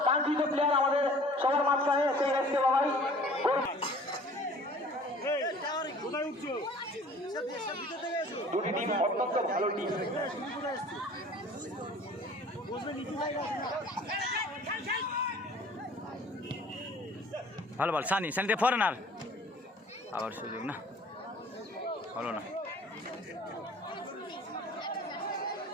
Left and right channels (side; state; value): both; normal; correlation 0.49